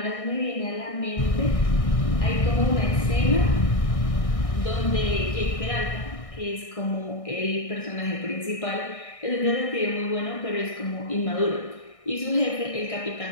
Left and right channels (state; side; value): late; right; 1.6 ms